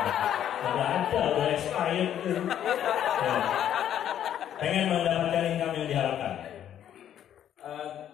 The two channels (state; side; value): quieter; right; 10.4 dB